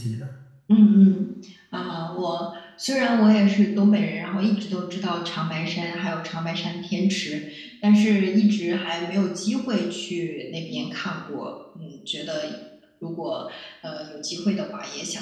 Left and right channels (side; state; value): both; identical; correlation 1.00